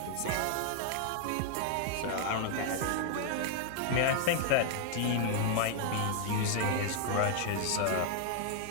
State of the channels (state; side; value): different; both; correlation 0.00